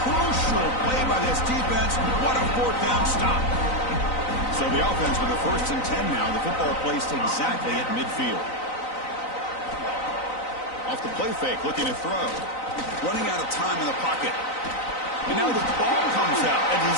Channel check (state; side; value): late; right; 3.9 ms